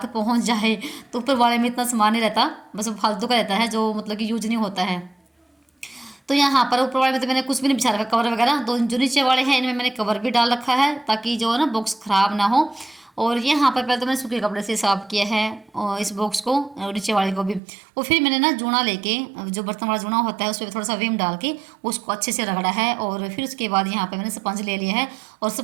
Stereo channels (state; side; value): drops out; left; at 17.6 s